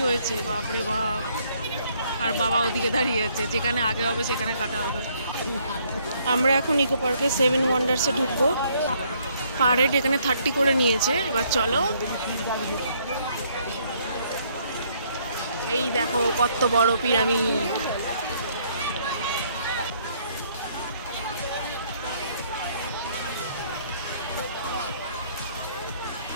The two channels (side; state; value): both; inverted; correlation -0.67